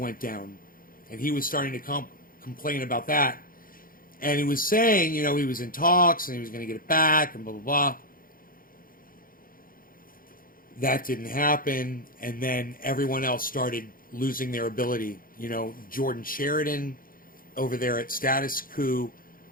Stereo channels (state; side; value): late; right; 0.41 ms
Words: down, and he was starting to complain about that. And he was saying, you know, he was in talks and he was going to get it back and blah, blah, blah. That didn't happen. And then everyone else started losing their ability. You know, Jordan Sheridan over there at Status Coup.